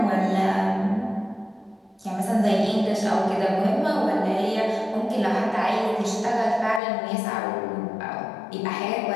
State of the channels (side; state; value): right; drops out; at 6.8 s